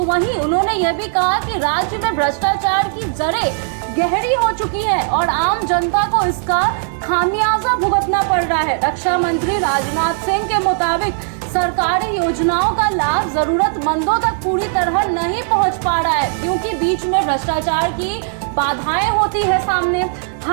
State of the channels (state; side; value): silent; left; 68 dB below the other